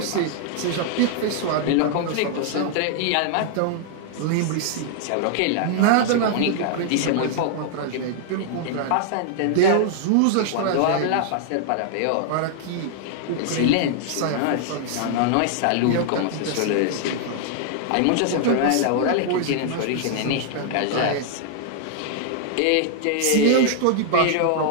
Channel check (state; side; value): different; both; correlation -0.01